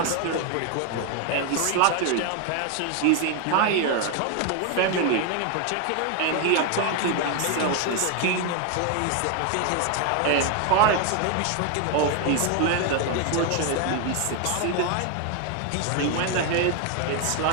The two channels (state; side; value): different; both; correlation 0.01